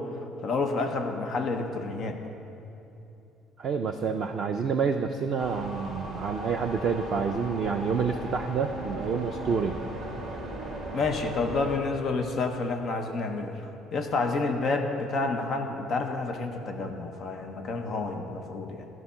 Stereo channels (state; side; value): normal; both; correlation 0.58